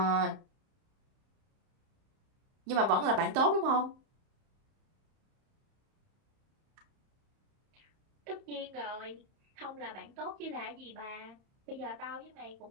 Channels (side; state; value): left; late; 31 ms